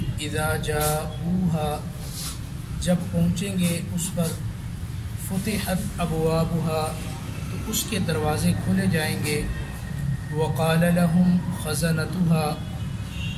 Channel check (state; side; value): identical; both; correlation 1.00